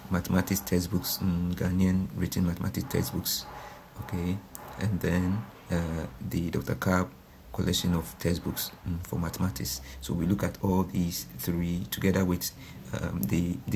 mathematics textbooks, Ghanaian written mathematics textbooks, okay, and then the Dr. Kab collection of textbooks for mathematics. So we look at all these three together with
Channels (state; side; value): identical; both; correlation 1.00